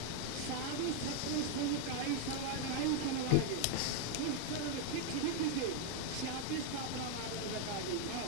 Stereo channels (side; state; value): both; different; correlation 0.01